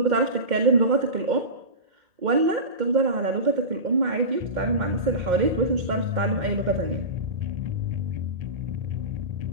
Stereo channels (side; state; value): left; late; 2.1 ms